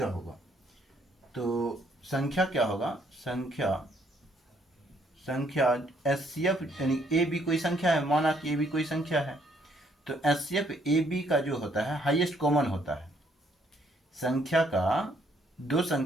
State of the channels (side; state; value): both; normal; correlation 0.68